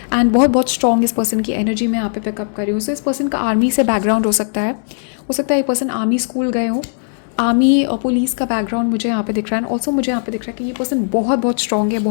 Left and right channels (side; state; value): right; silent; 68 dB below the other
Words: एंड बहुत स्ट्रॉन्ग इस पर्सन की एनर्जी में यहाँ पे पिकअप कर रही हूँ. सो इस पर्सन का आर्मी से बैकग्राउंड हो सकता है ये पर्सन आर्मी स्कूल गए हो, आर्मी और पुलिस का बैकग्राउंड मुझे यहाँ पे दिख रहा है. एंड ऑल्सो मुझे यहाँ पे दिख रहा है कि ये पर्सन बहुत स्ट्रॉन्ग है,